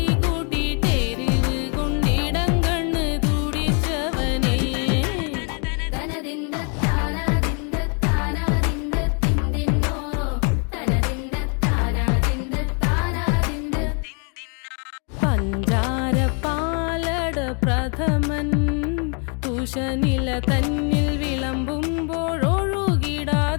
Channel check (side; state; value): right; quieter; 38.6 dB